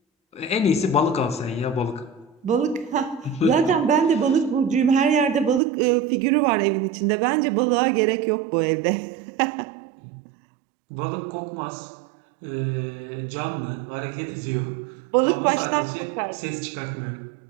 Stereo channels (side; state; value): left; drops out; at 5.6 s